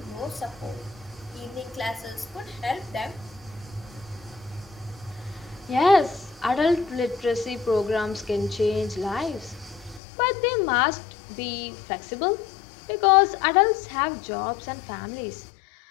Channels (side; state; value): right; drops out; at 10.0 s